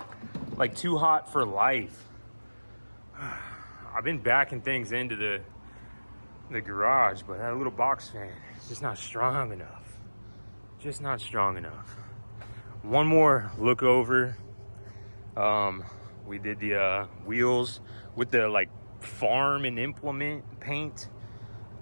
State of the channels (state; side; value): inverted; both; correlation -1.00